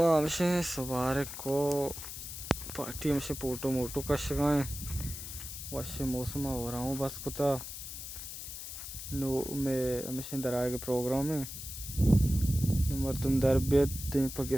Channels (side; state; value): left; noise; hiss, 9 dB below the sound